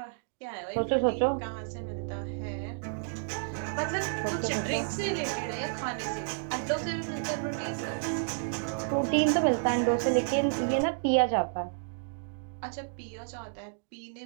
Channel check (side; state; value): left; silent; digital silence